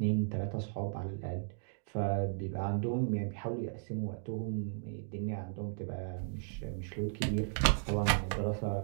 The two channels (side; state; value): left; silent; digital silence